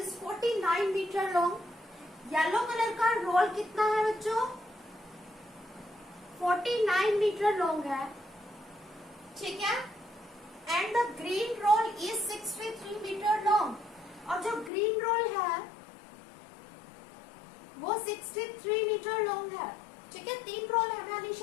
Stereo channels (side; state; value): right; drops out; at 14.7 s